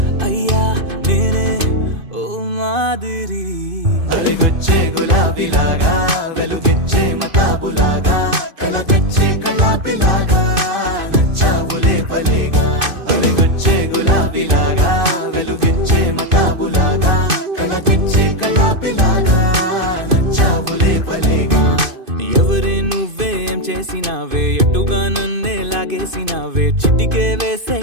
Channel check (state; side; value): late; left; 2.5 ms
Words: అయ్యా నేనే ఓ మాదిరి అవిగొచ్చే గులాబీలాగా వెలుగిచ్చే మతాబులాగా కలగొచ్చే కలాపిలాగా నచ్చావులే భలేగా అవిగొచ్చే గులాబీలాగా వెలుగిచ్చే మతాబులాగా కలగొచ్చే కలాపిలాగా నచ్చావులే భలేగా ఎవరే నువ్వేం చేసినావే ఎటుగా నన్నే లాగేసినావే చిటికే వేసే